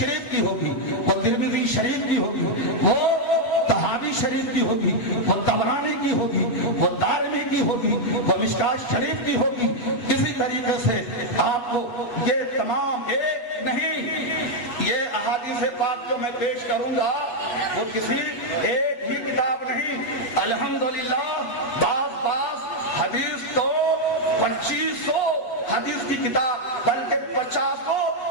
کی ہوگی، وہ ترمذی شریف کی ہوگی، وہ طحاوی شریف کی ہوگی، وہ طبرانی کی ہوگی، وہ دارمی کی ہوگی، وہ مشکات شریف کی ہوگی۔ اسی طریقے سے آپ کو یہ تمام ایک نہیں، یہ احادیث پاک جو میں پیش کروں گا وہ کسی ایک ہی کتاب نہیں، الحمدللہ بعض حدیث تو 2500 حدیث کی کتاب بلکہ 50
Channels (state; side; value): late; right; 8.2 ms